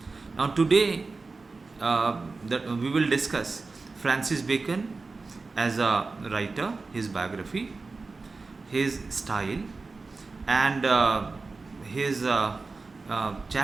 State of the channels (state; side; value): quieter; left; 3.9 dB